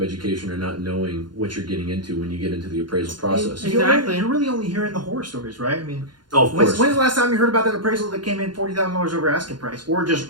education or not knowing what you're getting into when you get into the appraisal process. Exactly. You're really only hearing the horror stories, right? I mean, of course. When's the last time you heard about that appraisal that came in $40,000 over asking price, or just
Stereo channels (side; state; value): left; late; 0.71 ms